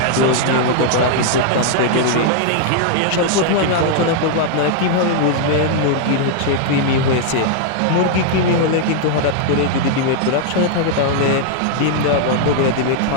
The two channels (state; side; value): different; both; correlation -0.01